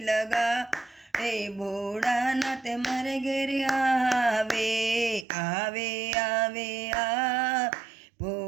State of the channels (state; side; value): drops out; left; at 5.2 s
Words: લગાડે ભોળાનાથ મારે ઘેર આવે આવે આવે આ